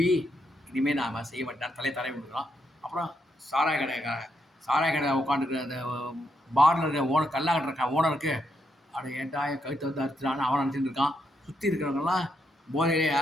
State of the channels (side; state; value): both; normal; correlation 0.79